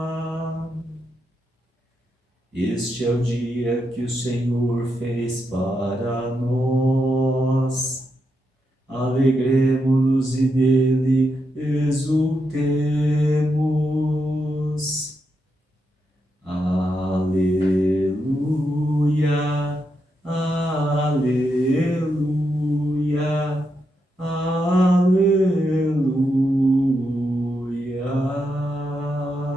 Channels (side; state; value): both; normal; correlation 0.83